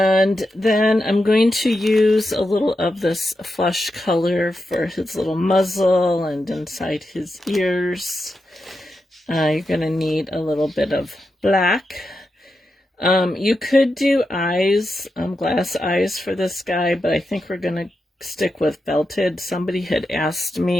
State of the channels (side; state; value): both; normal; correlation 0.88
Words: then I'm going to use a little of this flesh color for his little muzzle and inside his ears. You're going to need a little bit of black. You could do eyes, glass eyes for this guy, but I think we're going to stick with felted. Somebody had asked